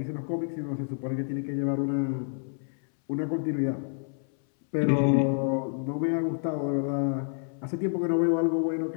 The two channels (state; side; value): silent; right; 59 dB below the other